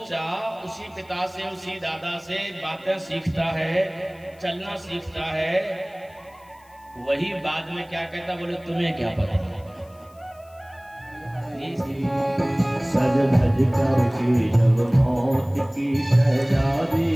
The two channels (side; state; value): left; noise; hiss, 30 dB below the sound